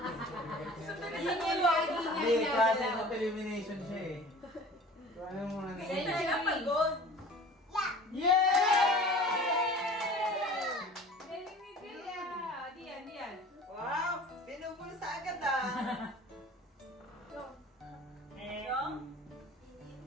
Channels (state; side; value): normal; both; correlation 0.44